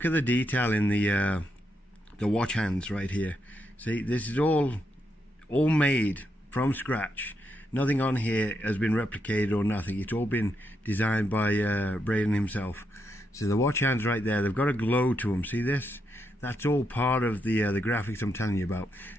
at the detail in the watch hands right here. See, this is all made from scratch. Nothing on here has been replicated or nothing. It's all been designed by Braden himself. So the watch hands right there, they've got a glow to them. See this? That's all part of the graphics I'm telling you about.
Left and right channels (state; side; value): normal; both; correlation 0.81